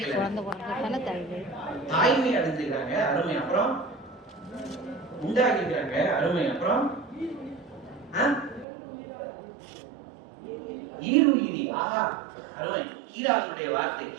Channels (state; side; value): drops out; left; at 8.7 s